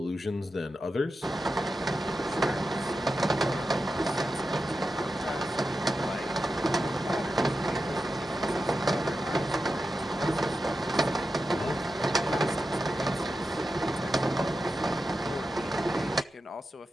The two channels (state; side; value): normal; both; correlation 0.90